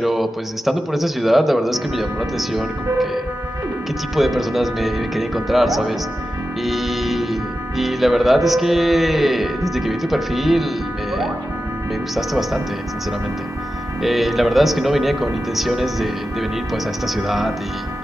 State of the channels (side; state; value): both; normal; correlation 0.92